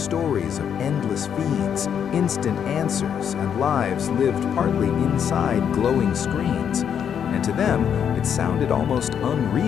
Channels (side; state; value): right; quieter; 8.2 dB